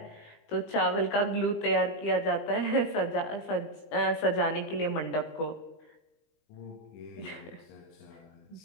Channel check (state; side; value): late; right; 19 ms